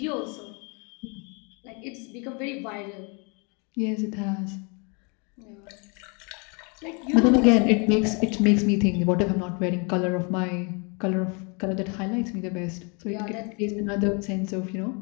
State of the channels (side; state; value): right; quieter; 33.4 dB